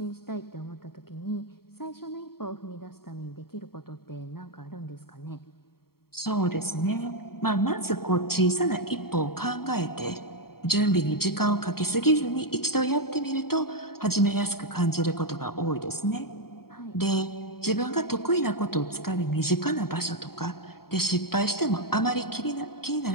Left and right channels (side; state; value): right; late; 0.94 ms